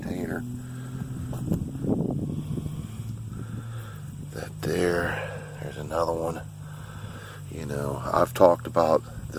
container. That there's another one. I've talked about the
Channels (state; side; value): identical; both; correlation 1.00